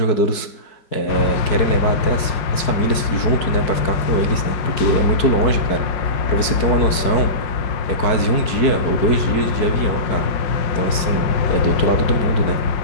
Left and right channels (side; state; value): right; late; 4.6 ms